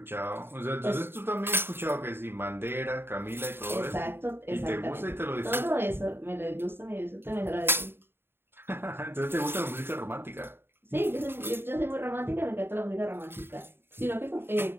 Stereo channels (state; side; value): late; left; 0.11 ms